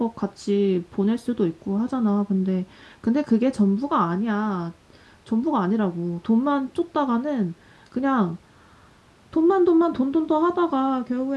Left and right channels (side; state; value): both; identical; correlation 1.00